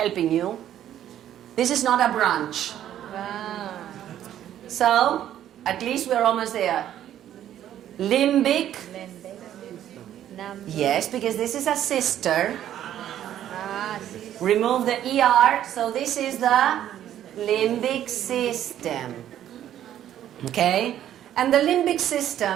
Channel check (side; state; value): left; quieter; 11.3 dB